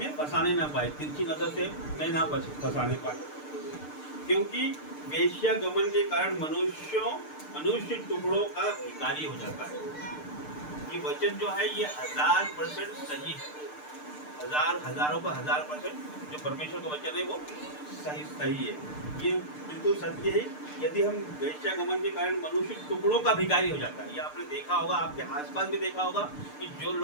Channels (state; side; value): late; right; 6.7 ms